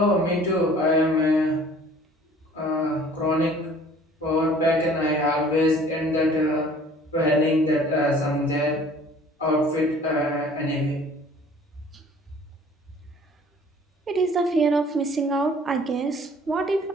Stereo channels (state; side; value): normal; both; correlation 0.52